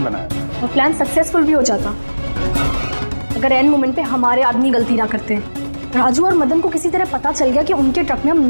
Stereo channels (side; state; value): both; inverted; correlation -1.00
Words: बनाया और प्लान सक्सेसफुल भी हो जाता अगर एंड मोमेंट पे हमारे आदमी गलती ना करते। राजू और मदन को किसी तरह पता चल गया कि उनके ट्रक में हम